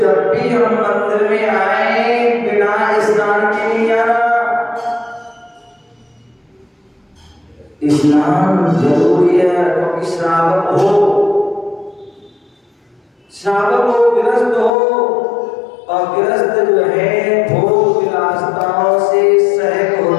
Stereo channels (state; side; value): drops out; right; at 14.7 s